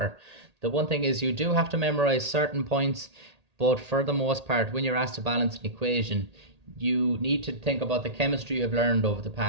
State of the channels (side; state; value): left; late; 1.8 ms